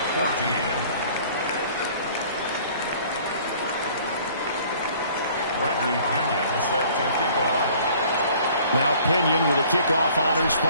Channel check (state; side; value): inverted; both; correlation -0.53